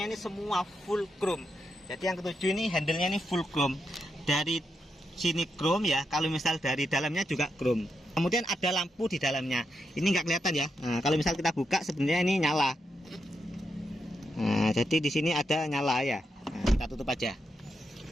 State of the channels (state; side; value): normal; both; correlation 0.84